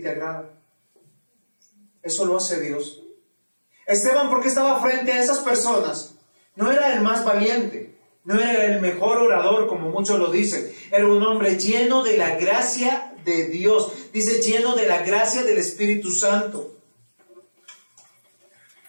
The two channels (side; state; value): both; inverted; correlation -1.00